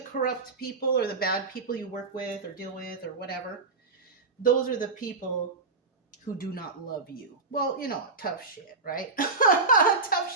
people or the bad people you work with or deal with or whatever. Those are the people who do not love you. Well, you know, tough shit, right?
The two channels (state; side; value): quieter; left; 3.9 dB